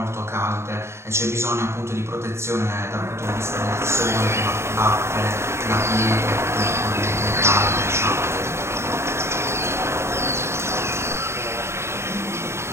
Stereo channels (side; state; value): left; late; 0.13 ms